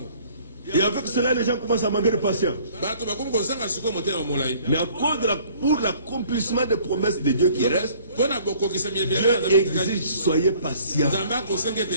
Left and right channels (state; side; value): inverted; both; correlation -0.56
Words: Et avec cela, les gens commencent à manquer de patience. Mais à cause pour l'accomplissement des promesses de Dieu qui restent, Dieu exige, soyez patients.